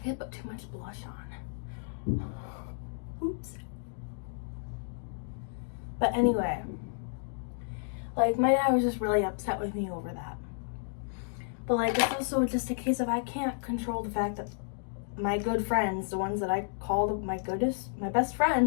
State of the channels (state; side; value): silent; right; digital silence